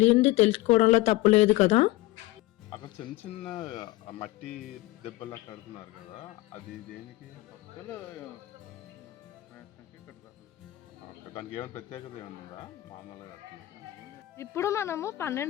తెలుసుకోవడంలో తప్పు లేదు కదా. అక్కడ చిన్న చిన్న మట్టి దెబ్బలా కడుతున్నారు కదా, అది దేనికి? ఓకే. దానికి ఏమైనా ప్రత్యేకత ఏమైనా ఉందా? మామూలుగా కడుతున్నారా? ఇప్పుడు మనము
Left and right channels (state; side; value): quieter; right; 18.6 dB